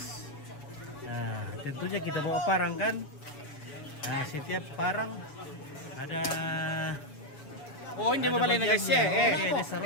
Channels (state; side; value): late; right; 7.0 ms